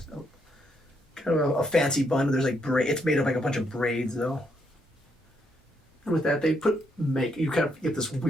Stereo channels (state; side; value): normal; both; correlation 0.76